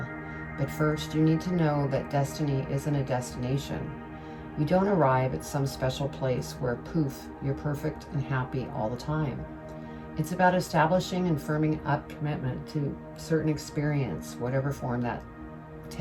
But first, you need to know that destiny isn't a destination. You don't arrive at some special place where, poof, you're perfect and happy all the time. It's about establishing and firming up commitment to certain experience, whatever form that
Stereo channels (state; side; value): identical; both; correlation 1.00